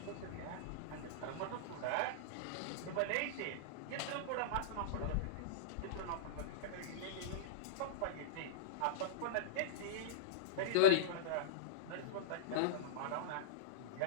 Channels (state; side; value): different; both; correlation -0.03